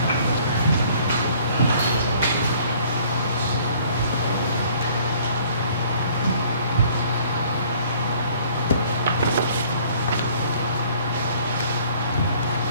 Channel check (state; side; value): inverted; both; correlation -0.56